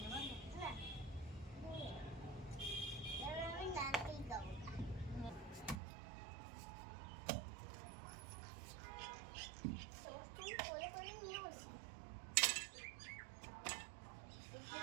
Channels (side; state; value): left; drops out; at 5.8 s